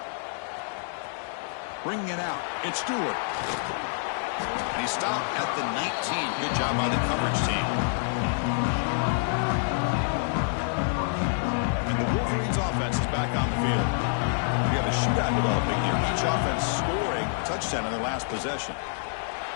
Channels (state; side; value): silent; right; digital silence